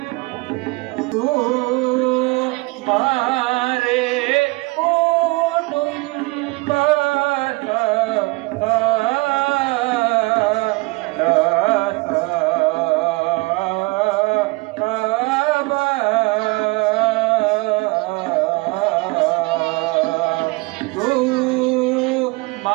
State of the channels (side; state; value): left; quieter; 25.8 dB